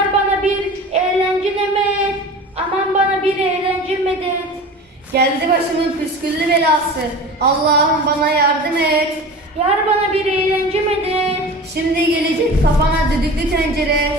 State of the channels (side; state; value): both; normal; correlation 0.36